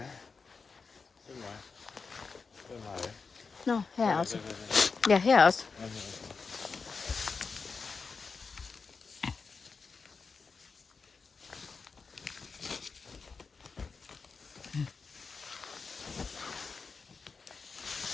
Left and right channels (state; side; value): quieter; right; 4.9 dB